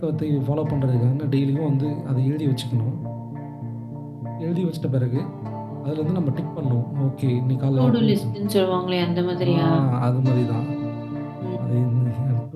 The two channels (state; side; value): identical; both; correlation 1.00